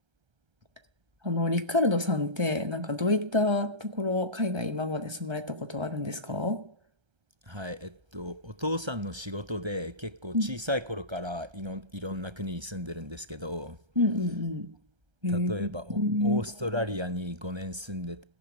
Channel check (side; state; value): left; late; 1.3 ms